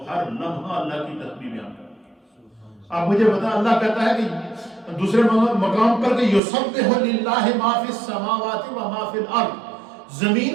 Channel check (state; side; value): drops out; left; at 6.4 s